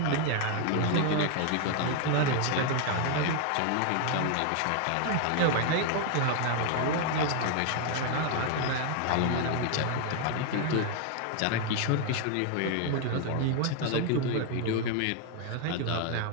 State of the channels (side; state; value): both; different; correlation 0.01